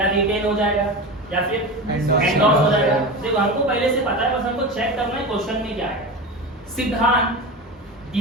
रिटेन हो जाएगा, या फिर एंडोर्स हो जाएगा। देखो हमको पहले से पता है, बस हमको चेक करना है क्वेश्चन में क्या है। सिद्धांत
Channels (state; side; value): normal; both; correlation 0.25